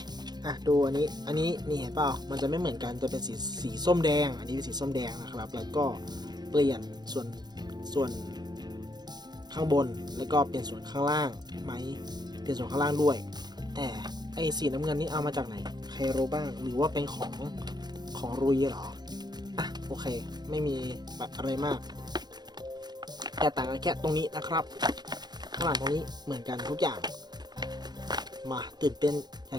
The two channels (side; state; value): left; late; 0.20 ms